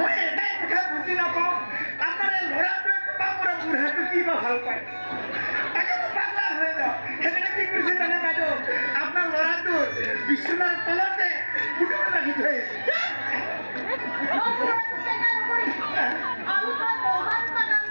এটাই কথা বুজি নাপাওঁ আপোনাৰ ল'ৰাটোৱে কবা মোৰ বুঢ়াটো কি বা ভাল পায় তাকে মই পাগলা হৈ যাওঁ সেইকাৰণে কি কৰিছে জানে বাইদেউ আপোনাৰ ল'ৰাটো বিচনাৰ তলতে ফুটো ৰাখি থৈ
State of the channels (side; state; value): both; inverted; correlation -1.00